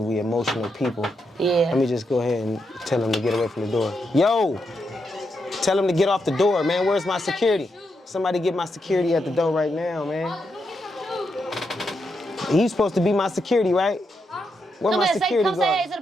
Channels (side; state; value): both; normal; correlation 0.83